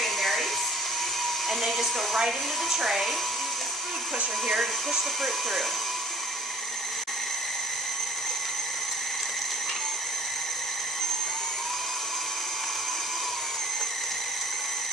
and they just go right into the tray. Use this food pusher here to push the fruit through.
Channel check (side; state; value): both; normal; correlation 0.52